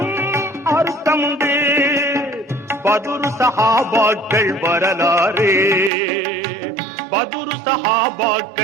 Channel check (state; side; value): drops out; left; at 5.9 s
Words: அர்த்தமுண்டு. பதுரு சஹாபாக்கள் வரலாறு, பதுரு